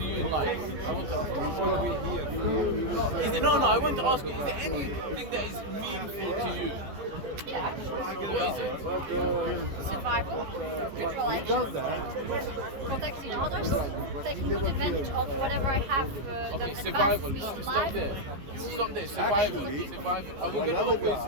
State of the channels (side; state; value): left; late; 15 ms